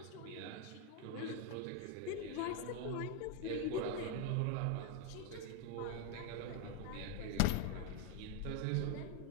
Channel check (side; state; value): both; different; correlation 0.01